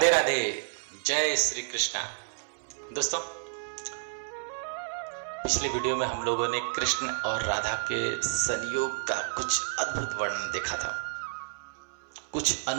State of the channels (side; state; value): left; silent; 58 dB below the other